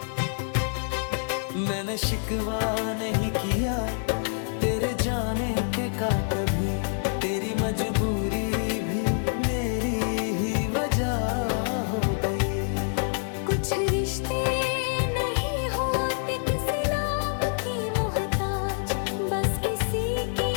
मैंने शिकवा नहीं किया तेरे जाने के का कभी, तेरी मजबूरी भी मेरी ही वजह हो गई। कुछ रिश्ते नहीं होते किसी नाम की मोहताज, बस किसी की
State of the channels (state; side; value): silent; right; 60 dB below the other